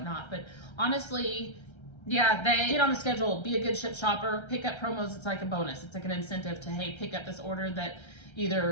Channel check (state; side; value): late; right; 1.3 ms